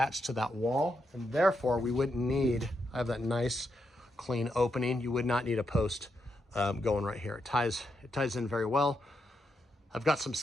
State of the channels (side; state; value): both; normal; correlation 0.82